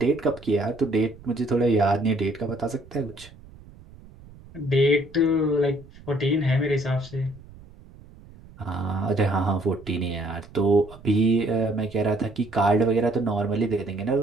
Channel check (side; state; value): right; noise; rumble, 21 dB below the sound